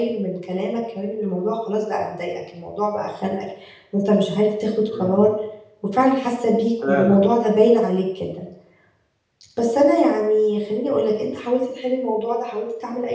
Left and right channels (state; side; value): identical; both; correlation 1.00